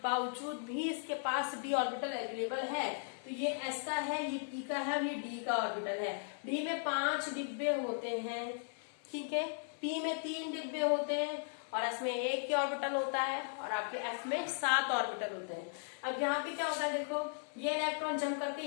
भी इसके पास d ऑर्बिटल अवेलेबल है, तो ये s का है, ये p का है और ये d का ऑर्बिटल है। d में 5 डिब्बे होते हैं, ठीक है, p में 3 डिब्बे होते हैं और s में 1 की ऑर्बिटल होता है और आपके f में 7 ऑर्बिटल होते हैं। अब यहाँ पे क्या होता है, देखो ये इलेक्ट्रॉन जंप करके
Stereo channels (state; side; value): silent; right; 53 dB below the other